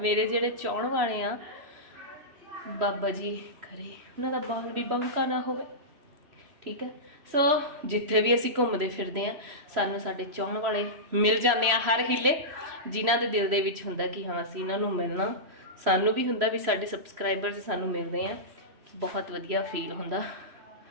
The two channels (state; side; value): late; left; 3.0 ms